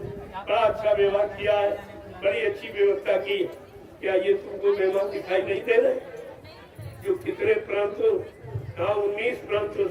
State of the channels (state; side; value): identical; both; correlation 1.00